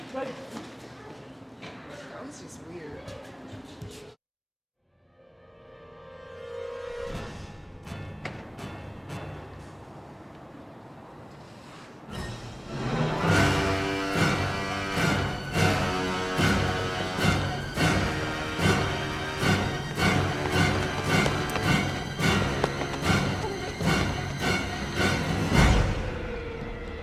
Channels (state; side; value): identical; both; correlation 1.00